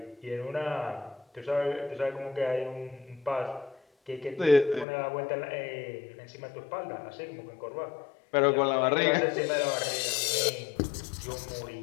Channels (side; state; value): right; drops out; at 4.9 s